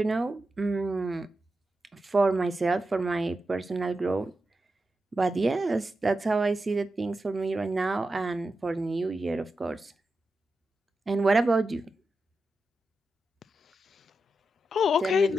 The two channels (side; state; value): both; normal; correlation 0.89